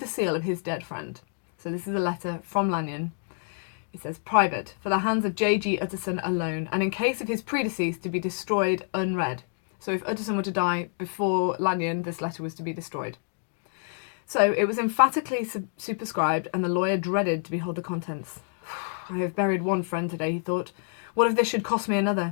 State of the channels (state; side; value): silent; right; 60 dB below the other